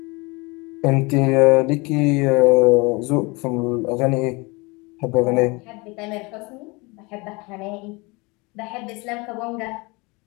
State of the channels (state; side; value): quieter; right; 26.4 dB